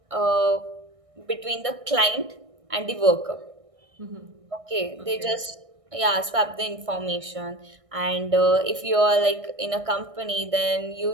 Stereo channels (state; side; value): late; left; 1.6 ms